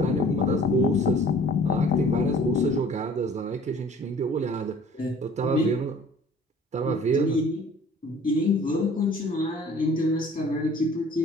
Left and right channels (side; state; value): both; normal; correlation 0.51